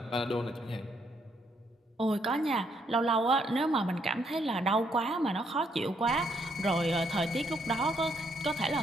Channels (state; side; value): normal; both; correlation 0.73